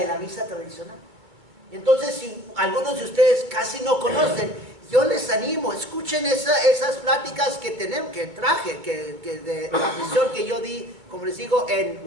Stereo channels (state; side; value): late; left; 2.3 ms